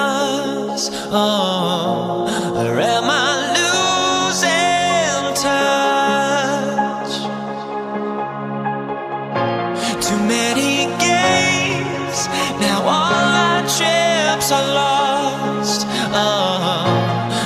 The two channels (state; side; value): identical; both; correlation 1.00